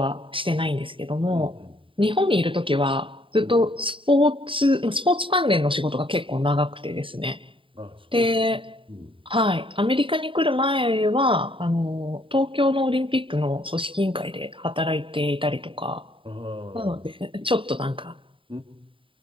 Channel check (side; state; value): left; late; 0.25 ms